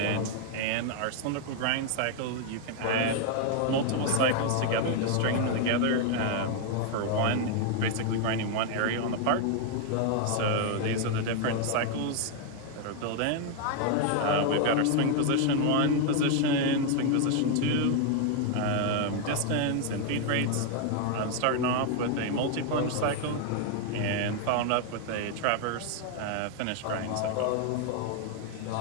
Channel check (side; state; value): both; different; correlation 0.00